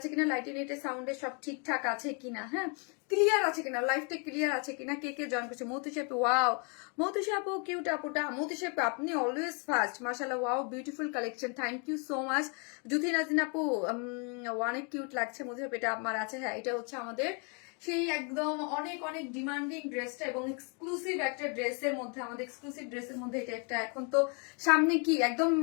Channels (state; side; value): quieter; right; 36.2 dB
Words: কিনা, লাইটে নেটে সাউন্ডে সব ঠিকঠাক আছে কিনা, হ্যাঁ, ক্লিয়ার আছে কিনা, লাইফটা ক্লিয়ার আছে কিনা। কে কে জয়েন করছে? মৌতুষি আপু, ওয়াও মৌতুষি আপু, কিউট আপুটা। মৌতুষি আপু আপনি অলওয়েজ ফার্স্ট, মাশাআল্লাহ, wow beautiful collection, thank you so much. Juthi Najin আপু, অনেক কিউট লাগছে। মধু এটা আমার আছে, হ্যাঁ, এটা হচ্ছে আমাদের সেই একদম অনেক অনেক ডিমান্ডিং ড্রেসটা এবং এক্সক্লুসিভ একটা ড্রেসের মধ্যে, আমাদের এক্সক্লুসিভ ড্রেসের মধ্যে এটা একটা। এখন তো সামনে কি একদম